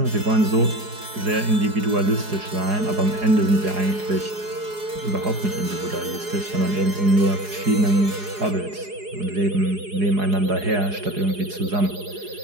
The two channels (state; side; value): late; left; 4.8 ms